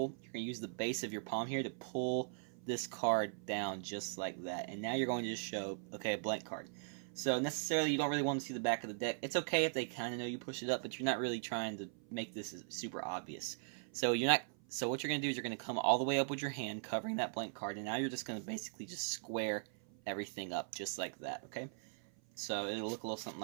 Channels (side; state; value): left; silent; 51 dB below the other